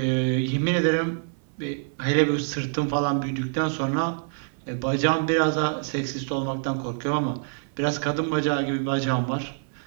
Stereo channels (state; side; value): silent; left; 61 dB below the other